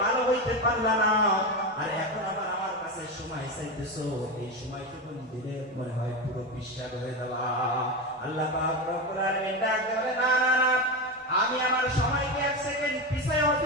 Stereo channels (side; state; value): both; normal; correlation 0.17